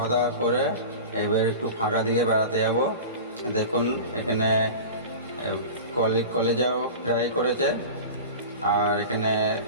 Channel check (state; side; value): inverted; both; correlation -0.33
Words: দাওয়া করে এবার একটু ফাঁকা দিকে বেড়াতে যাব। দেখুন এখানে কলেজাও ফ্রাই করেছে, আর এখানে